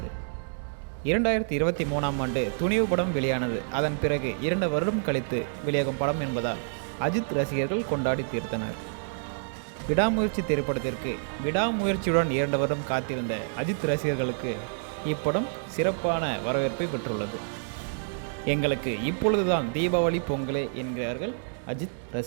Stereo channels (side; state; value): left; silent; digital silence